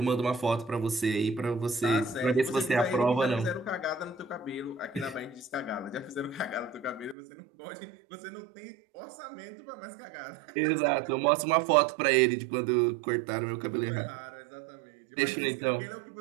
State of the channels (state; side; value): drops out; left; at 7.2 s